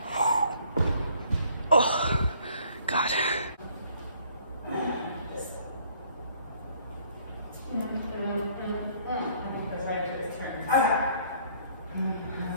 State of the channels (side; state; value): both; inverted; correlation -0.60